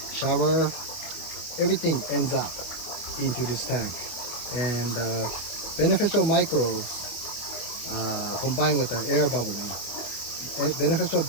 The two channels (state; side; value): late; right; 25 ms